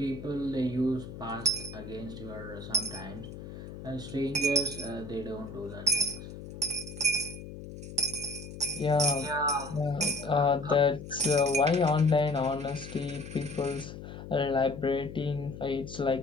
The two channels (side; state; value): left; noise; hum, 12 dB below the sound